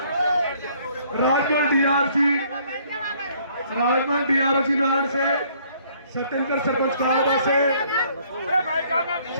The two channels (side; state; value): both; inverted; correlation -0.62